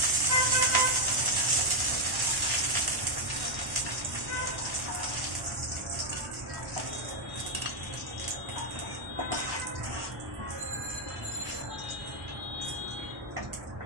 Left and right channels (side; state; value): left; late; 1.1 ms